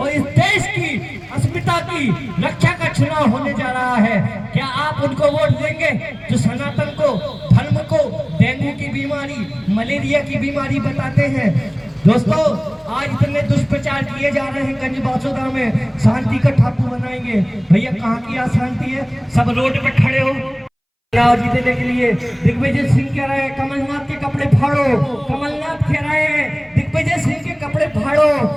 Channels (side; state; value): both; identical; correlation 1.00